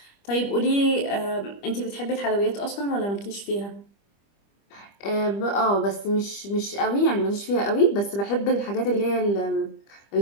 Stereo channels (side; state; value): right; late; 25 ms